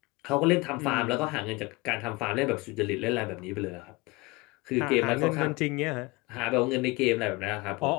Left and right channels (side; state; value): right; quieter; 23.6 dB